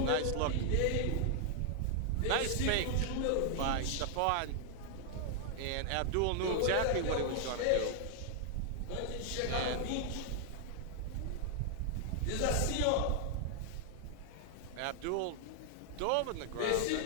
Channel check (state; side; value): different; both; correlation 0.00